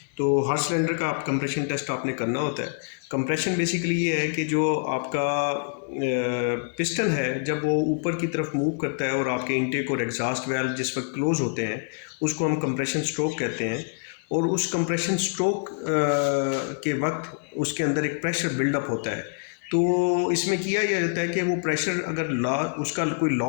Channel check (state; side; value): silent; right; digital silence